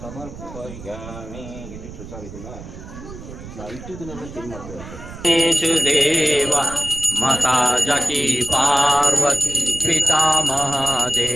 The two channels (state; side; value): noise; right; rumble, 13 dB below the sound